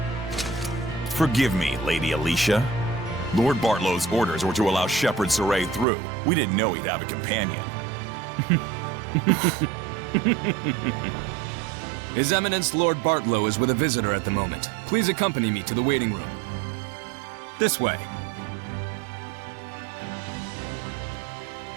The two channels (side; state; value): left; drops out; at 5.9 s